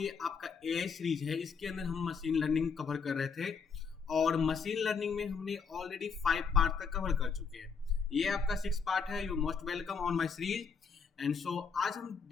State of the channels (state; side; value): quieter; right; 5.8 dB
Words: आपका एआई सीरीज है इसके अंदर हम मशीन लर्निंग कवर कर रहे थे और मशीन लर्निंग में हमने ऑलरेडी 5 पार्ट तक कवर कर चुके हैं। ये आपका 6 पार्ट है। You most welcome on my series. And so आज हम